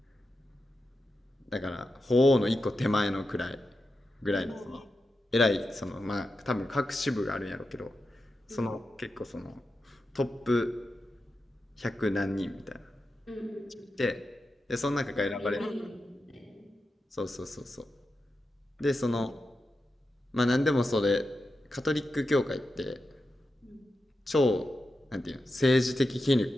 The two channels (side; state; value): both; normal; correlation 0.90